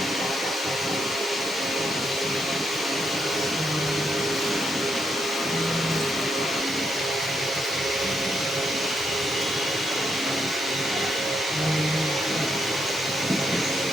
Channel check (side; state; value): both; normal; correlation 0.79